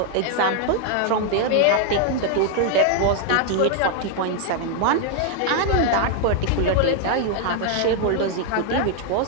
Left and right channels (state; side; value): different; both; correlation 0.00